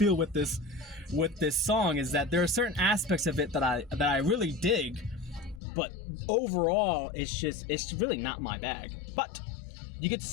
with this song, is that there are certain aspects of it that I really dig, but overall, it's really not my bag. But you get to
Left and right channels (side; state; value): right; drops out; at 5.6 s